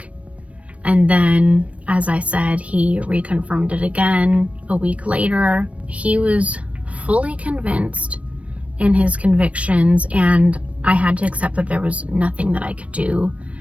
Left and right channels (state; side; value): late; left; 0.064 ms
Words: And then, as I said, he reconfirmed it again a week later. He was fully convinced in his convictions, and I had to accept that there was nothing that I could do